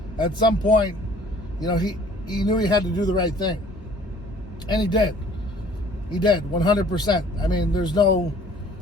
at some point, he knew he had to do the right thing. And he did. He did, 100%. I mean, there's no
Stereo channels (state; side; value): normal; both; correlation 0.53